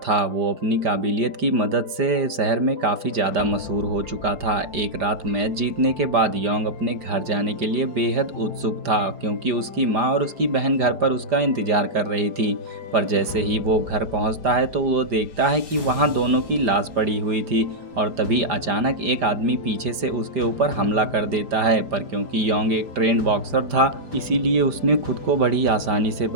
वो अपनी काबिलियत की मदद से शहर में काफ़ी ज़्यादा मशहूर हो चुका था। एक रात मैच जीतने के बाद योंग अपने घर जाने के लिए बेहद उत्सुक था, क्योंकि उसकी माँ और उसकी बहन घर पर उसका इंतज़ार कर रही थी। पर जैसे ही वो घर पहुंचता है तो वो देखता है कि वहां दोनों की लाश पड़ी हुई थी। और तभी अचानक एक आदमी पीछे से उसके ऊपर हमला कर देता है। पर क्योंकि योंग एक ट्रेंड बॉक्सर था, इसीलिए उसने खुद को बड़ी आसानी से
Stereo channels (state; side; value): late; left; 5.0 ms